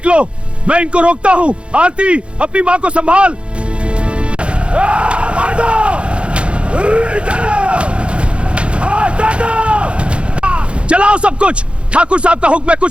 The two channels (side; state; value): left; late; 0.058 ms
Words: मैं इनको रोकता हूँ। आरती, अपनी माँ को संभाल। चलाओ सब कुछ, ठाकुर साहब का हुक्म है,